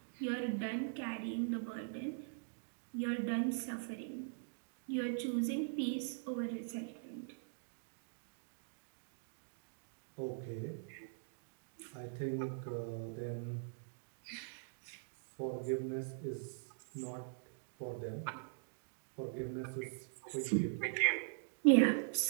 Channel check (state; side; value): silent; left; digital silence